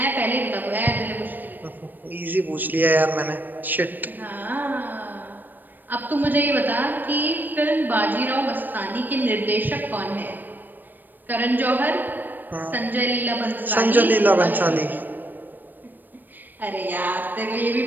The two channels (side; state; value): left; late; 0.090 ms